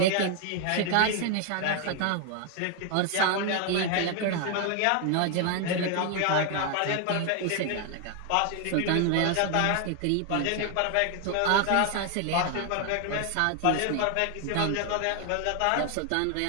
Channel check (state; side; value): different; both; correlation 0.00